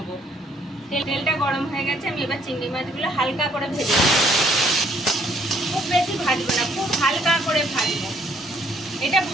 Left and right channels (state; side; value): normal; both; correlation 0.66